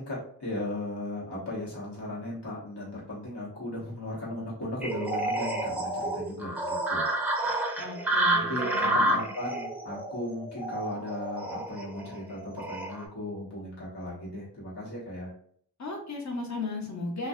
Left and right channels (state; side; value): normal; both; correlation 0.31